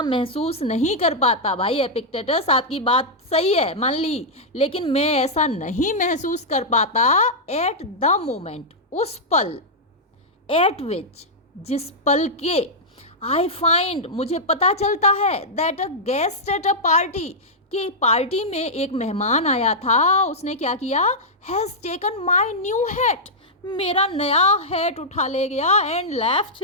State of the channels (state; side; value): normal; both; correlation -0.07